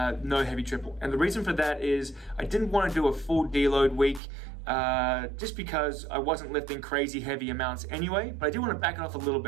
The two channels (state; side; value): drops out; left; at 4.2 s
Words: heavy triple. And the reason for that is I didn't want to do a full deload week just because I wasn't lifting crazy heavy amounts anyway, but I do want to back it off a little